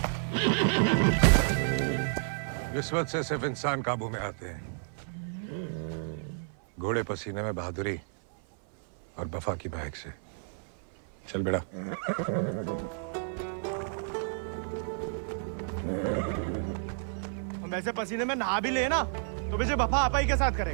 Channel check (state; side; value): silent; left; 57 dB below the other